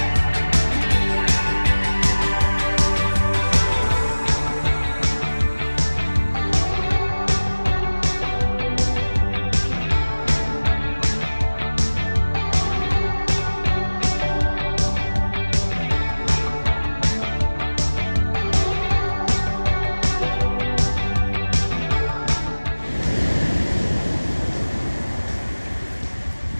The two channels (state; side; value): inverted; both; correlation -1.00